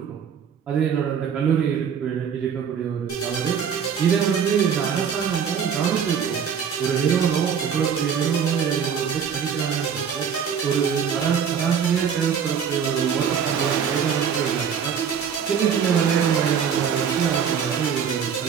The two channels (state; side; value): quieter; left; 7.4 dB